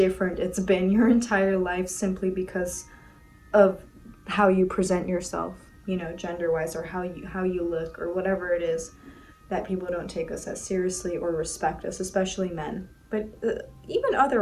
it's been your entire life simply because of how you present yourself, gender-wise, or how you look, or whatever it is, that people don't take us as seriously or respect us, especially men, but even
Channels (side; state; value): both; identical; correlation 1.00